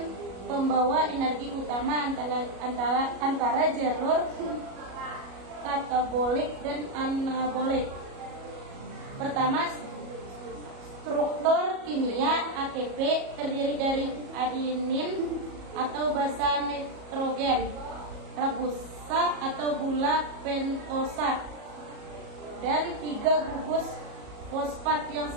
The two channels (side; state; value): left; late; 37 ms